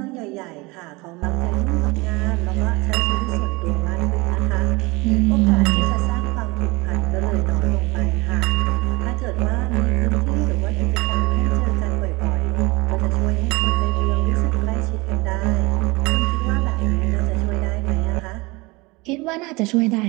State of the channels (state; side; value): quieter; left; 24.5 dB